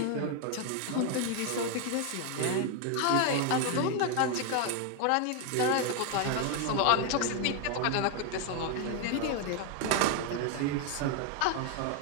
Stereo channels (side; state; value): both; different; correlation 0.01